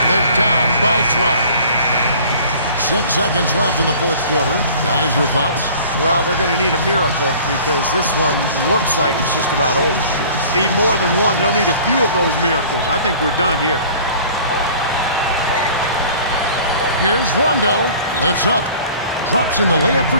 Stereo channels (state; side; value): inverted; both; correlation -0.47